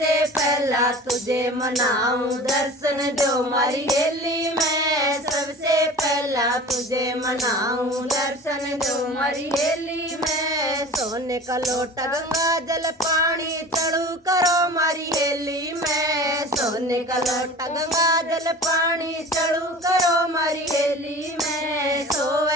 पहला तुझे मनाऊं दर्शन दो मारी हेली में, सबसे पहला तुझे मनाऊं दर्शन दो मारी हेली में। सोने का लोटा गंगा जल पानी चढ़ू करो मारी हेली में, सोने का लोटा गंगा जल पानी चढ़ू करो मारी हेली में।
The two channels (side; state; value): both; normal; correlation 0.39